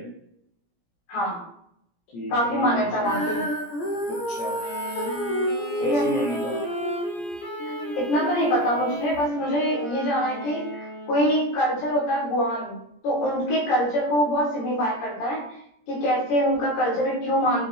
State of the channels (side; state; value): right; late; 17 ms